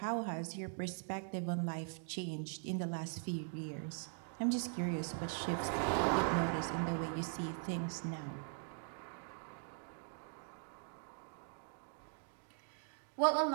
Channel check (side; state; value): left; silent; 50 dB below the other